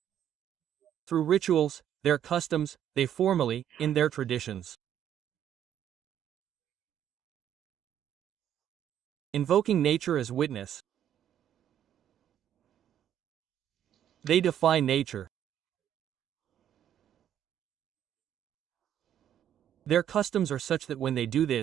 through rituals, their customs, they formally, in their traditions, invoking nature as witness. They defy nature. Their customs are such that when they do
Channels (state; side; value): quieter; left; 10.3 dB